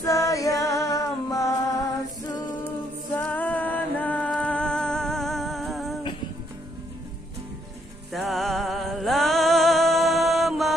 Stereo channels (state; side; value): normal; both; correlation 0.71